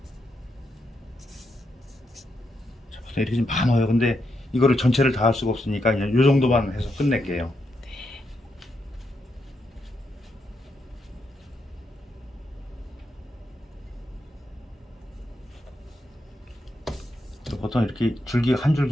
자, 보통 이렇게 좀 많아요. 근데 이거를 전체를 다 할 수가 없으니까 그냥 요 정도만 해서 끝낼게요. 보통 이렇게 줄기 한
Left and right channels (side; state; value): both; normal; correlation 0.82